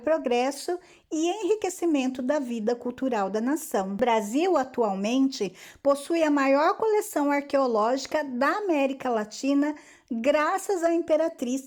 e enriquecimento da vida cultural da nação. O Brasil, atualmente, possui a maior coleção arqueológica da América Latina, graças à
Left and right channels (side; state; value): both; identical; correlation 1.00